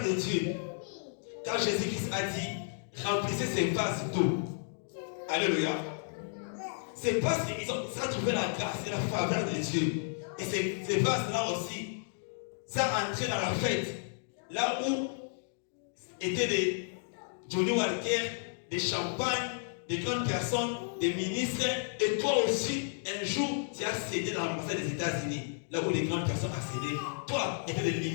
de Dieu. Car Jésus-Christ a dit, remplissez ces vases d'eau. Alléluia. C'est parce qu'ils ont trouvé la grâce et la faveur de Dieu. Et ces vases-là aussi, ça a entré dans la fête. Là où étaient des Johnny Walker, des champagnes, des grandes personnes, des ministres. Et toi aussi, un jour, tu as cédé dans l'ambassade des États-Unis. Là où les grandes personnes accédaient. Toi, il y avait des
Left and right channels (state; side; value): silent; right; digital silence